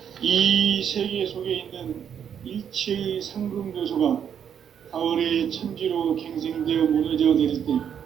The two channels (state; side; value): quieter; left; 8.4 dB